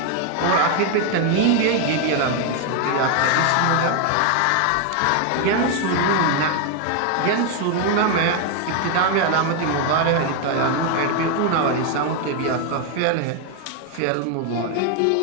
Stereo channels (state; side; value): different; both; correlation 0.01